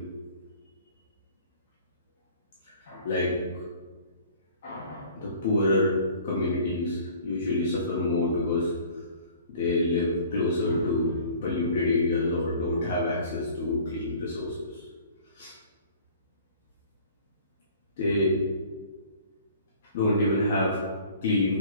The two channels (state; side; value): inverted; both; correlation -0.49